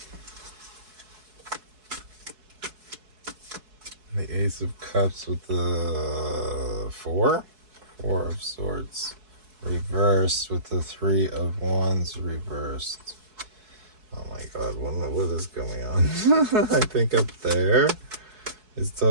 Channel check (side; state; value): left; late; 4.7 ms